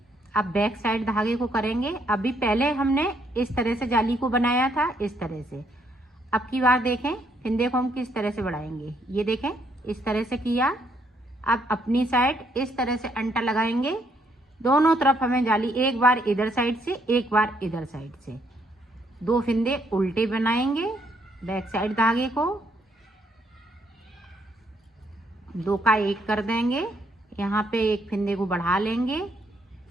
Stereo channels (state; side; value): normal; both; correlation 0.71